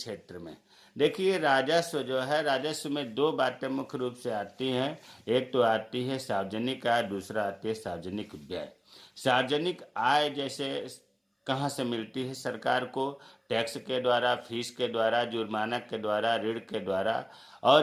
में। देखिए राजस्व जो है, राजस्व में दो बातें मुख्य रूप से आती हैं। एक तो आती है सार्वजनिक आय, दूसरा आती है सार्वजनिक व्यय। सार्वजनिक आय जैसे कहाँ से मिलती है सरकार को? टैक्स के द्वारा, फीस के द्वारा, जुर्माना के द्वारा, ऋण के द्वारा।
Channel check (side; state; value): both; identical; correlation 1.00